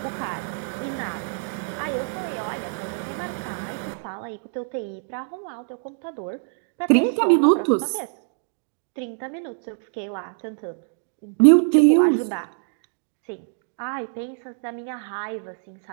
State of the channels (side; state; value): left; silent; digital silence